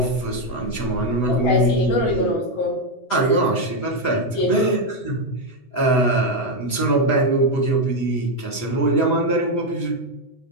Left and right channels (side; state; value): right; late; 8.0 ms